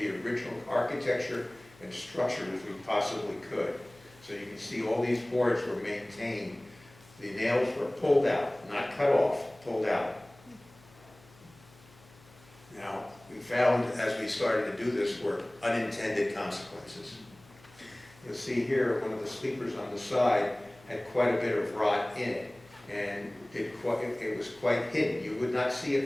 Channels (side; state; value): left; noise; hum, 26 dB below the sound